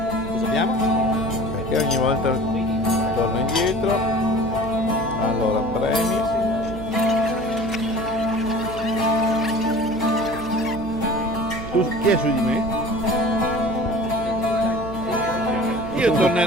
Cosa abbiamo? Perché ogni volta torno indietro. Allora, premi. Tu chi è su di me? Io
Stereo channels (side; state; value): right; noise; hum, 12 dB below the sound